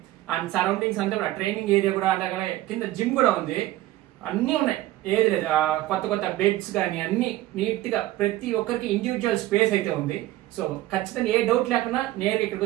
అండ్ సరౌండింగ్స్ అంతా కూడా ట్రైనింగ్ ఏరియా కూడా, అలాగే కింద జిమ్ కూడా ఉంది. అన్ని ఉన్నాయి, ఏది లేదు. కొత్త బెడ్స్ కానీ అన్ని నీట్ గా ప్రతి ఒక్కరికి ఇండివిజువల్ స్పేస్ అయితే ఉంది. సో ఖచ్చితంగా ఏ డౌట్ లేకుండా నేరుగా ఇక్కడికి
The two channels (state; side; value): quieter; left; 16.0 dB